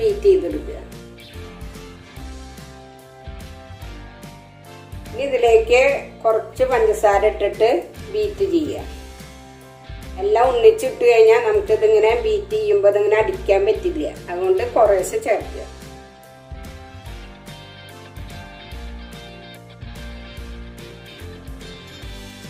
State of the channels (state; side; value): identical; both; correlation 1.00